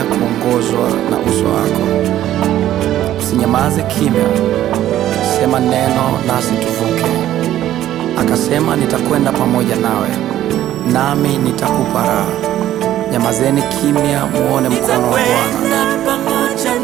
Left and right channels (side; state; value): left; quieter; 12.7 dB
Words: kuongozwa na uso wako. Usinyamaze kimya, sema neno nasi tuvuke. Akasema, nitakwenda pamoja nawe, nami nitakupa raha. Nyamazeni kimya, muone mkono wa Bwana. Nitakwenda pamoja